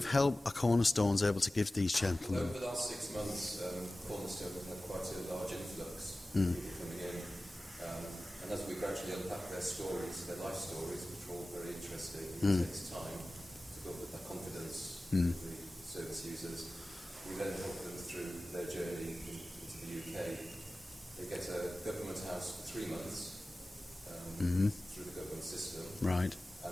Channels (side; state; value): both; normal; correlation 0.96